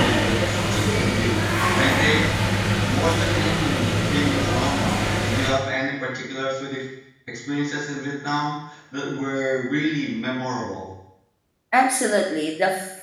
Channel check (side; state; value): both; identical; correlation 1.00